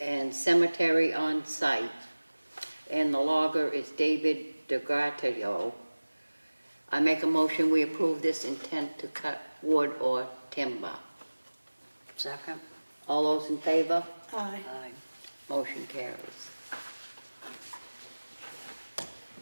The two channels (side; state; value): both; inverted; correlation -1.00